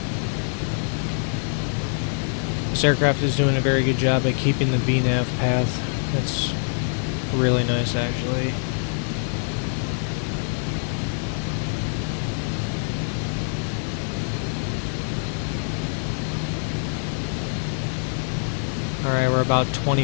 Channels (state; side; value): silent; right; digital silence